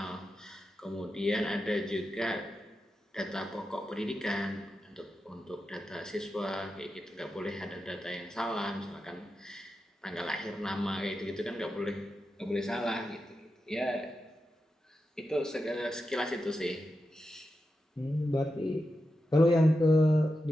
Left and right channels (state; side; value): normal; both; correlation 0.89